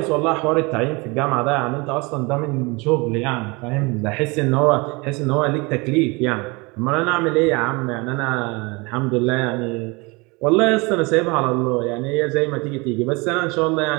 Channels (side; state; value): left; quieter; 26.7 dB